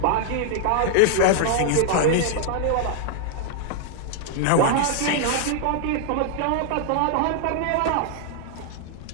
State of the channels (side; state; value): both; different; correlation -0.01